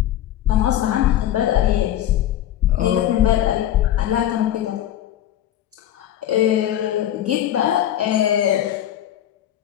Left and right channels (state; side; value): quieter; right; 11.8 dB